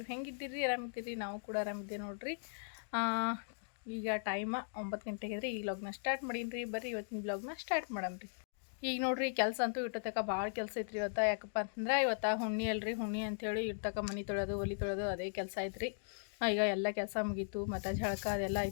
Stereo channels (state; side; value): silent; right; digital silence